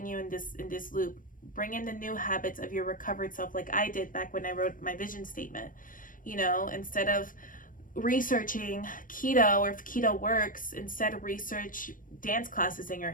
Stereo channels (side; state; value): right; late; 0.39 ms